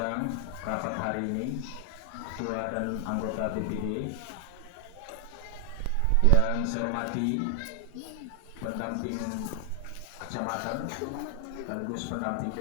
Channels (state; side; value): different; both; correlation 0.00